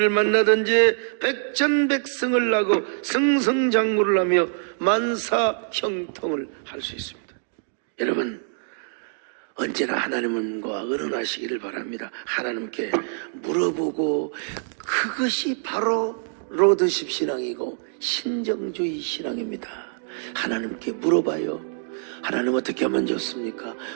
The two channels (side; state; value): left; silent; digital silence